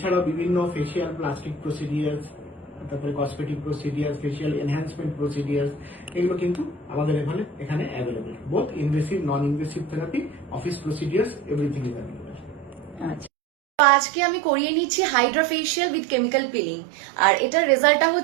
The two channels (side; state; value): left; drops out; at 13.3 s